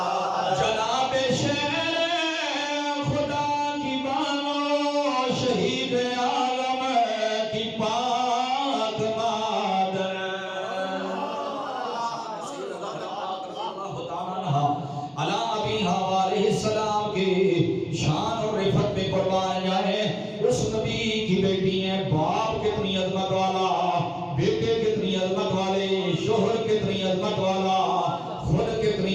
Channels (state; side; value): identical; both; correlation 1.00